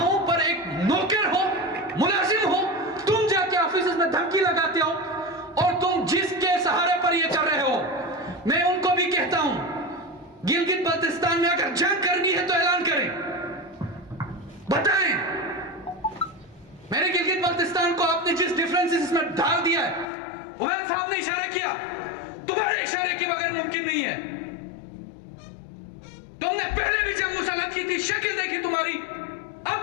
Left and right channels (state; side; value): drops out; right; at 20.1 s